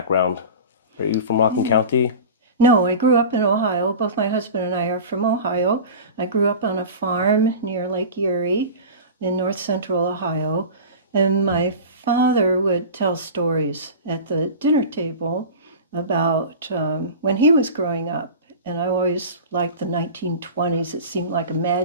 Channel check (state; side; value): inverted; both; correlation -0.33